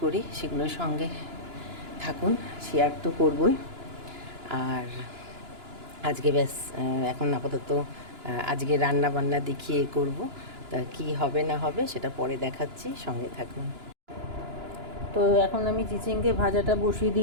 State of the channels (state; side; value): late; left; 2.9 ms